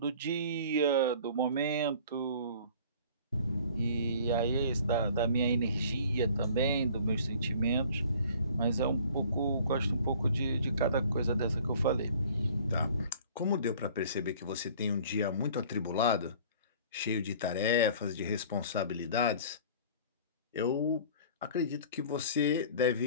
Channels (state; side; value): inverted; both; correlation -0.49